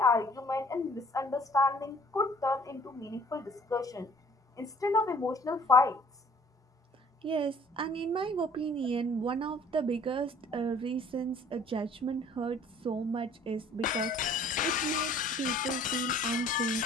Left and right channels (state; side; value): normal; both; correlation 0.54